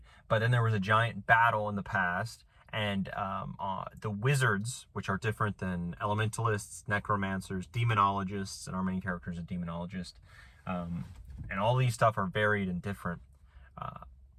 But then there was a giant battle in the past, and the wizards, which are different than elementalists, necromancers, demonologists, and our main character is a demonologist, and all these stuff are varied and different,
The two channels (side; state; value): both; identical; correlation 1.00